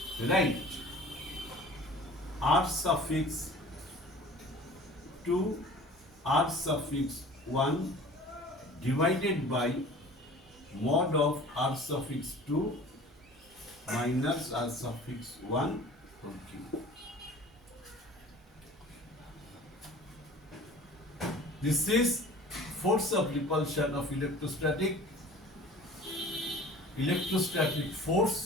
right? R suffix 2 R suffix 1 divided by mod of R suffix 2 minus R suffix 1 whole cube. This is force of repulsion of electrostatic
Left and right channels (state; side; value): normal; both; correlation 0.44